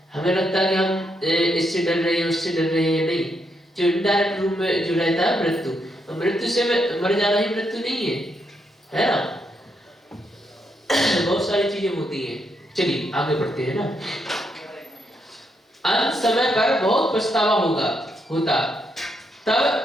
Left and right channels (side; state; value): both; normal; correlation 0.79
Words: हमें लगता है कि हम इससे डर रहे हैं, उससे डर रहे हैं, नहीं। जो इनडायरेक्ट रूप में जो रहता है मृत्यु से मर जाना ही मृत्यु नहीं है ना। बहुत सारी चीजें होती हैं। चलिए आगे बढ़ते हैं ना। अंत समय पर बहुत पछतावा होता